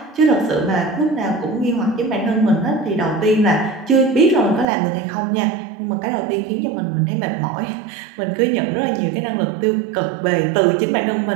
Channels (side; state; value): left; drops out; at 4.7 s